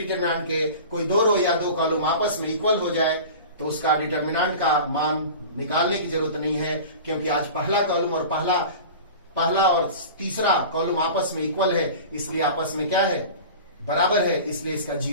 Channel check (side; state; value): both; inverted; correlation -0.36